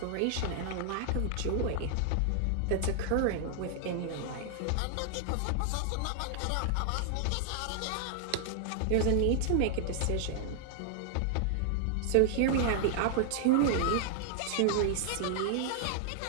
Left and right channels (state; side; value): different; both; correlation 0.00